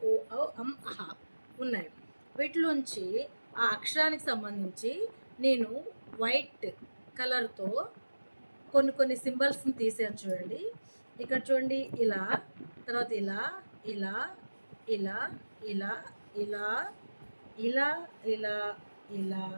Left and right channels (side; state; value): both; inverted; correlation -1.00